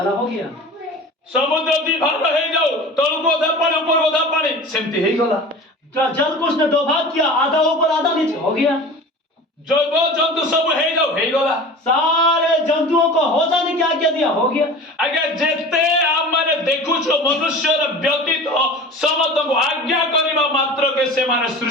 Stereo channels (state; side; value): normal; both; correlation 0.37